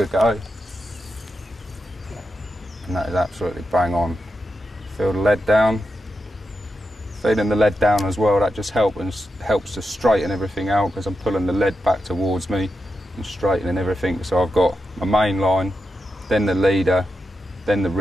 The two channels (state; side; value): normal; both; correlation 0.88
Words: go. And that is absolutely bang on. Feel the lead down. Feeling the lead down as well, that just helps to straighten everything out, because I'm pulling the lead back towards me and straightening everything. So I've got my main line, then the leader, then the